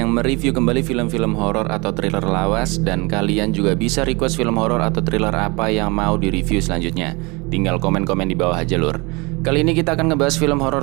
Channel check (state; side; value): quieter; left; 26.8 dB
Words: mereview kembali film-film horor atau thriller lawas. Dan kalian juga bisa request film horor atau thriller apa yang mau direview selanjutnya. Tinggal komen-komen di bawah aja Lur. Kali ini kita akan ngebahas film